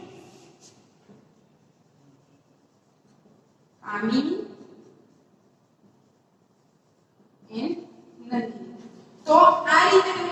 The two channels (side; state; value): both; identical; correlation 1.00